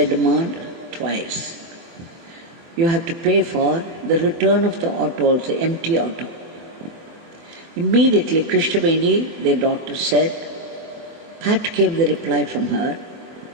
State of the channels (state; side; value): late; left; 24 ms